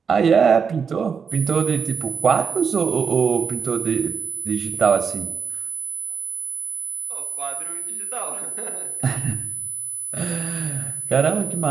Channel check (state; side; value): quieter; left; 6.2 dB